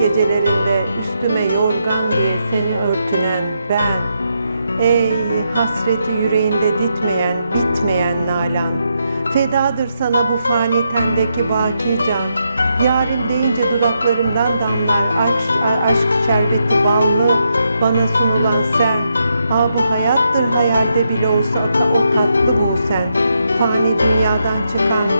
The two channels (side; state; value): both; inverted; correlation -0.81